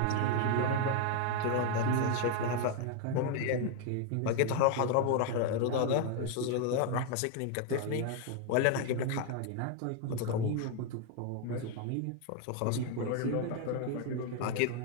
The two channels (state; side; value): different; both; correlation 0.00